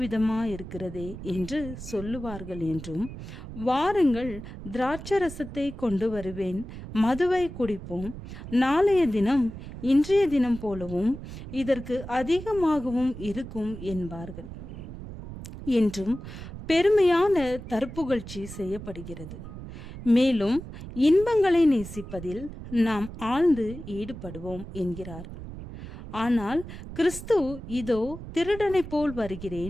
விதமாயிருக்கிறதே என்று சொல்லுவார்கள் என்றும், வாருங்கள், திராட்சரசத்தை கொண்டு வருவேன், மதுவை குடிப்போம், நாளைய தினம் இன்றைய தினம் போலவும் இதற்கு அதிகமாகவும் இருக்கும் என்பார்கள் என்றும் பெருமையான தற்புகழ்ச்சி செய்யப்படுகிறது. மேலும் இன்பங்களை நேசிப்பதில் நாம் ஆழ்ந்து ஈடுபடுவோம் என்கிறார்கள். ஆனால் கிறிஸ்து இதோ திருடனை போல்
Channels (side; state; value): right; noise; rumble, 11 dB below the sound